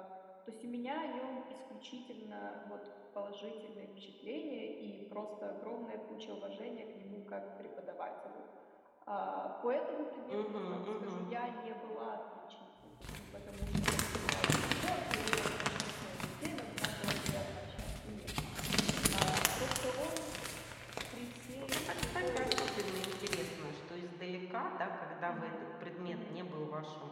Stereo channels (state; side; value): identical; both; correlation 1.00